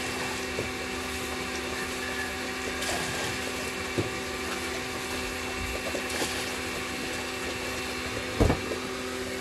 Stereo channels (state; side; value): identical; both; correlation 1.00